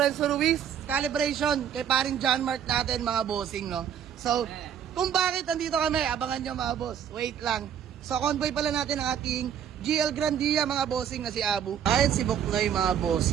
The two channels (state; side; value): quieter; left; 8.8 dB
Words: Ruiz, calibration, kay paring John Mark natin mga bossing, no? So, kung bakit andito kami, abangan nyo mga boss. Wait lang. So, convoy pala natin ang ating GL Grandia mga bossing na si Abu. Ayun si Buknoy mga